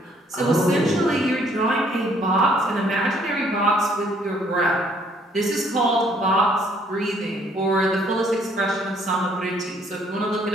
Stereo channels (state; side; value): normal; both; correlation 0.64